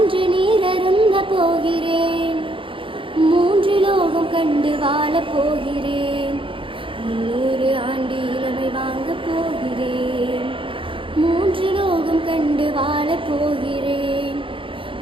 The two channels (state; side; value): late; left; 0.25 ms